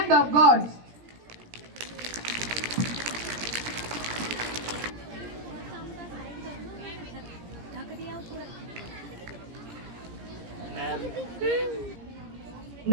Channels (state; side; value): late; left; 17 ms